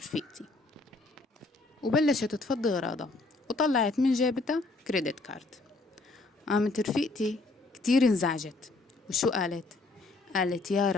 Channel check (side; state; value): right; quieter; 3.3 dB